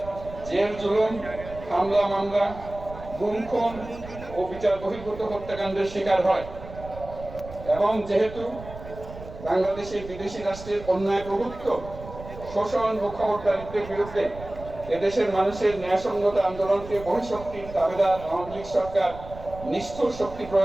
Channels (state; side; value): noise; right; rumble, 14 dB below the sound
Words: জেল জুলুম, হামলা মামলা, গুম খুন ও বিচার বহির্ভূত হত্যাকাণ্ডের শিকার হয়। এবং যেহেতু বাংলাদেশে বিদেশি রাষ্ট্রের অন্যায় প্রভুত্ব, শোষণ ও খবরদারিত্বের বিরুদ্ধে এদেশের মানুষের ন্যায়সঙ্গত আন্দোলনকে বহিঃশক্তির দাবিদার আওয়ামী লীগ সরকার নিষ্ঠুর শক্তি